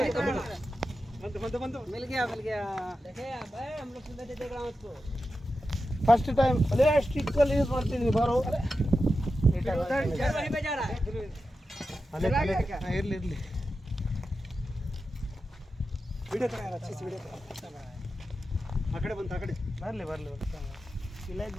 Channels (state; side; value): normal; both; correlation 0.91